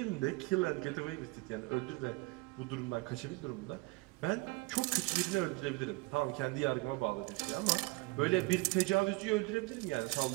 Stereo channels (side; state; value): left; quieter; 24.4 dB